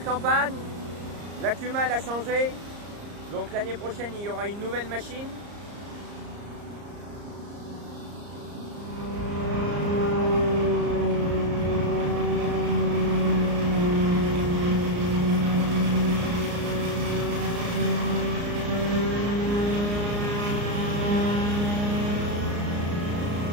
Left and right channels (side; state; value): left; late; 34 ms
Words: campagne. La Cuma elle a changé, donc l'année prochaine il y aura une nouvelle machine.